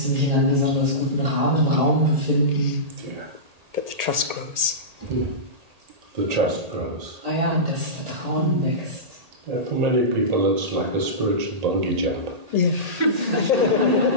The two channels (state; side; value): late; left; 1.8 ms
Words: mich in einem besonders guten Raum befinden. But the trust grows. Yeah. The trust grows. Ah ja, das Vertrauen wächst. Yeah, for many people, it's like a spiritual bungee jump. Yeah. Für